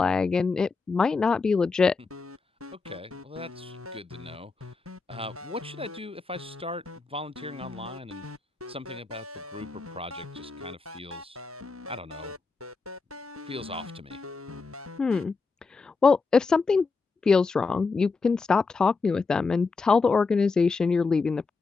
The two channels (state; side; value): quieter; right; 4.4 dB